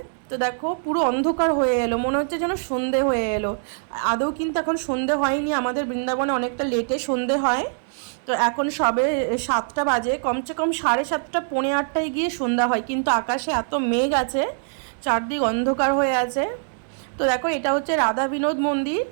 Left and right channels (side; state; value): left; silent; digital silence